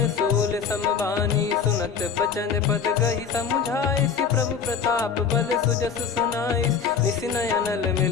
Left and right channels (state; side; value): quieter; right; 6.5 dB